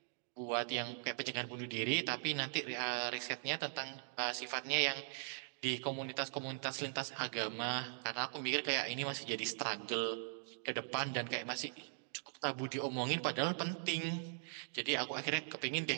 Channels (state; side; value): silent; left; digital silence